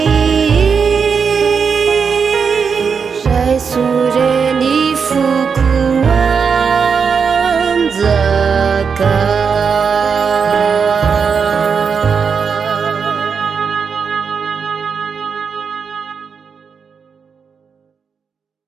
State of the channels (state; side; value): quieter; left; 6.0 dB